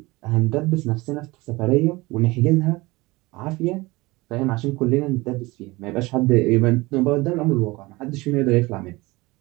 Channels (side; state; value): left; quieter; 22.0 dB